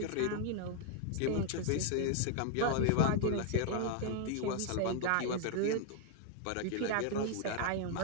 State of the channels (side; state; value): both; different; correlation 0.00